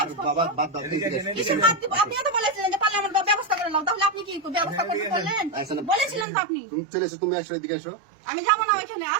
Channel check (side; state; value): left; drops out; at 6.2 s